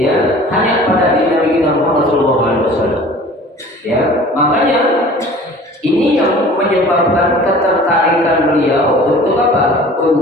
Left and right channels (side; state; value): both; normal; correlation 0.45